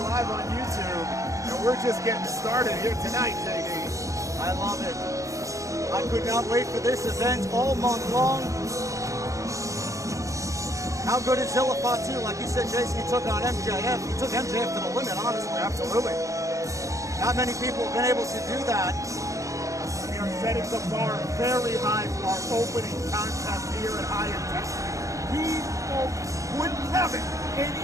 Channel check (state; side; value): late; left; 0.15 ms